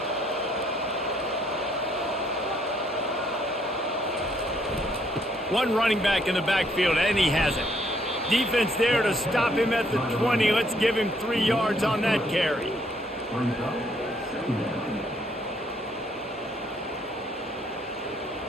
One running back in the backfield, and he has it. Defense there to stop him at the 20. Let's give him 3 yards on that carry.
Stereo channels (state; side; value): normal; both; correlation 0.68